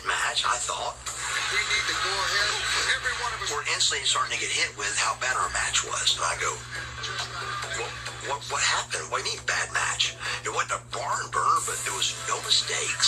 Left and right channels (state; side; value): identical; both; correlation 1.00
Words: match, I thought. We need to go ahead. Every one of us. We're instantly starting to get hit with how bad our match was. And I go, what happened? What do you mean bad match? It wasn't a barn burner, but there was no